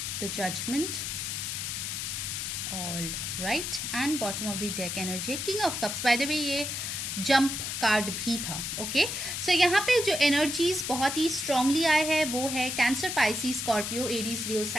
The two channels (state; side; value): noise; left; hiss, 3 dB below the sound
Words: The judgement, all right, and bottom of the deck energy king of cups. By the way ये जंप कार्ड भी था। ओके सो यहाँ पे जो एनर्जीज बहुत ही स्ट्रांगली आए हैं वो है Cancer, Pisces, Scorpio, Aries, Leo,